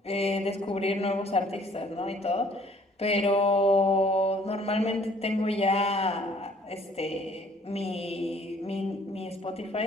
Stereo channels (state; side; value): normal; both; correlation 0.58